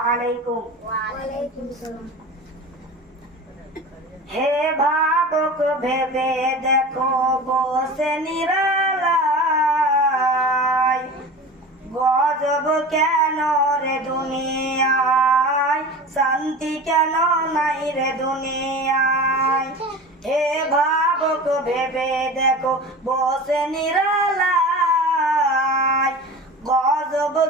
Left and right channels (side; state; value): both; normal; correlation 0.33